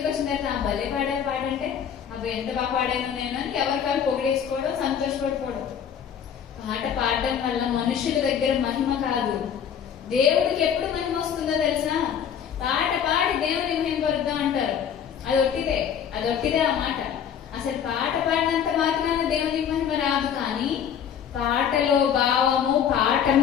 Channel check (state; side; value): quieter; right; 8.4 dB